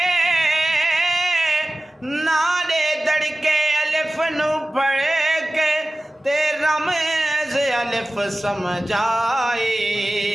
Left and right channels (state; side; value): normal; both; correlation 0.97